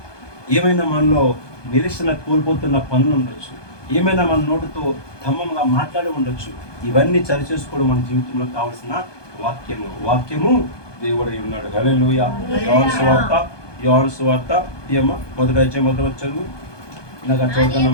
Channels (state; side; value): late; right; 1.2 ms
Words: ఏమైనా మనలో నిరీక్షణ కోల్పోతున్న పనులు ఉండొచ్చు, ఏమైనా మన నోటితో ధమ్మంగా మాట్లాడి ఉండొచ్చు. ఇవన్నీ సరి చేసుకోవడం మన జీవితంలో కావాల్సిన వాక్యము దేవుడై ఉన్నాడు. హల్లెలూయా. యోహాను సువార్త ఏమో మొదటి అధ్యాయం మొదటి చదువు. నాకు